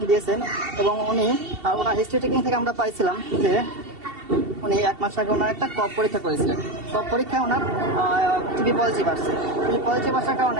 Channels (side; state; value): left; late; 2.7 ms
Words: দিয়েছেন। এবং ওনার হিস্ট্রি টেকিং থেকে আমরা পাইছিলাম যে উনি 1 মাস আগে ওনার একটা কফ পরীক্ষা করেছিলেন। কফ পরীক্ষায় ওনার টিবি পজিটিভ আসছে। টিবি পজিটিভ আসার